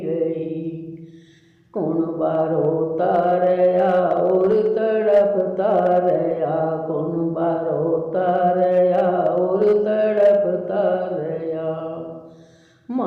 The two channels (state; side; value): identical; both; correlation 1.00